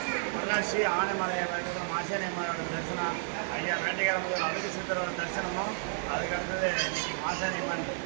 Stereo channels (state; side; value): silent; left; 57 dB below the other